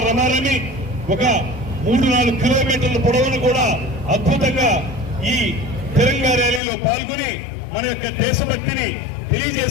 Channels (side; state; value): right; drops out; at 6.6 s